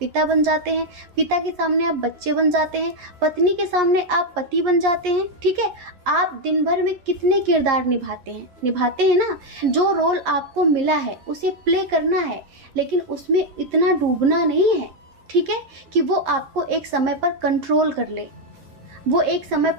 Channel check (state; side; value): late; left; 11 ms